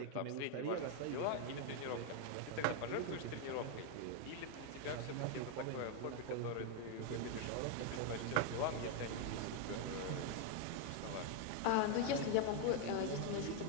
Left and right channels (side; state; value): both; different; correlation 0.01